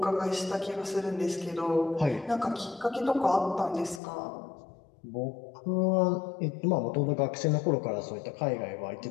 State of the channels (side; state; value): right; drops out; at 4.0 s